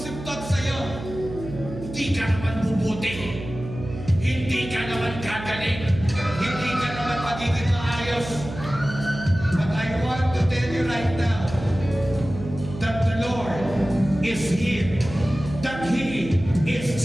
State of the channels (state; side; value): noise; right; hum, 11 dB below the sound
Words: thought sa'yo. Hindi ka naman bubuti. Hindi ka naman gagaling. Hindi ka naman magiging maayos. But I want to tell you right now that the Lord is here. That He is